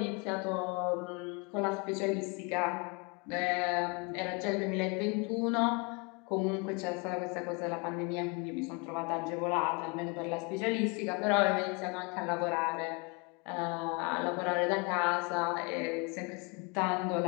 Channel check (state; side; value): quieter; right; 31.2 dB